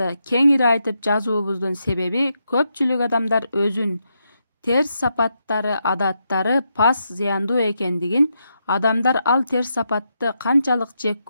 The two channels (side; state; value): both; inverted; correlation -0.83